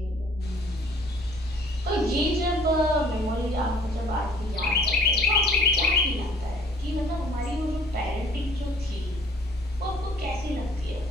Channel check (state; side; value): normal; both; correlation 0.55